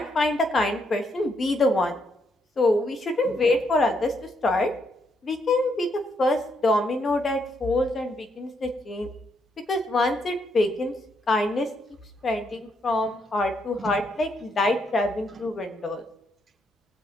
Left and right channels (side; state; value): both; normal; correlation 0.76